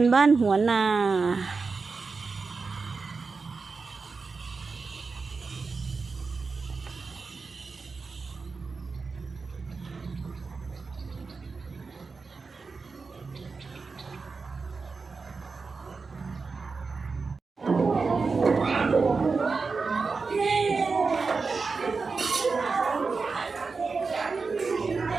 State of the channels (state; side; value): quieter; left; 4.5 dB